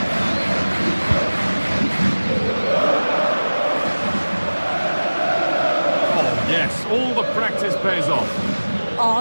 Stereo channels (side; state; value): both; inverted; correlation -1.00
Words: Oh yes, all the practice pays off. Oh,